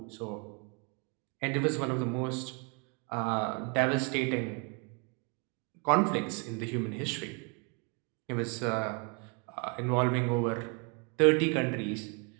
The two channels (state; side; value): quieter; left; 34.8 dB